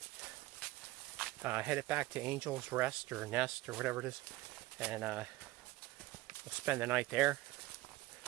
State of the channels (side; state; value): left; quieter; 18.1 dB